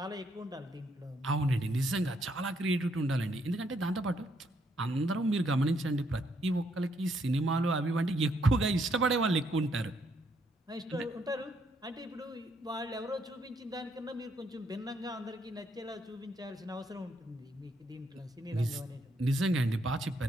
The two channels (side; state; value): both; normal; correlation 0.73